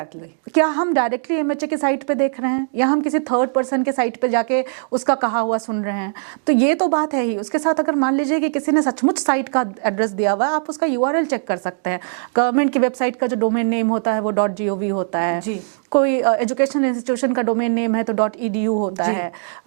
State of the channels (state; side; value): silent; left; digital silence